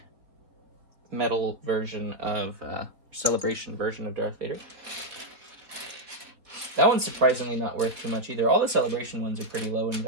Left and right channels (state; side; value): late; left; 3.7 ms